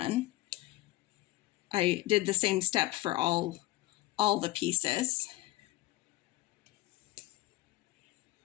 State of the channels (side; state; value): right; quieter; 18.2 dB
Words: I did the same step for all the pieces.